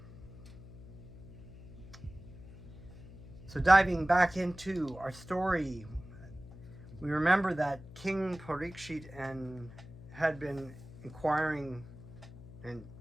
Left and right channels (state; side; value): noise; left; hum, 16 dB below the sound